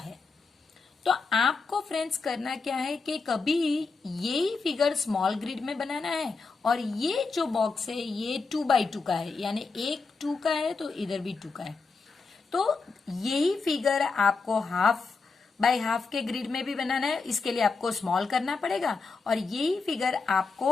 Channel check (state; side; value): quieter; right; 4.4 dB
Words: तो आपको फ्रेंड्स करना क्या है कि कभी यही फिगर स्मॉल ग्रिड में बनाना है और ये जो बॉक्स है ये 2x2 का है, यानी एक 2 का है तो इधर भी 2 का है। तो यही फिगर आपको हाफ बाय हाफ के ग्रिड में भी बनाना है, इसके लिए आपको स्मॉल करना पड़ेगा। और यही फिगर